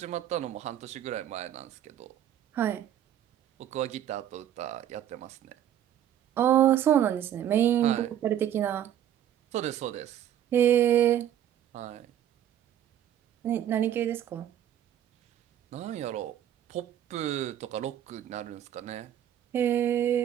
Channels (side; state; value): left; quieter; 10.8 dB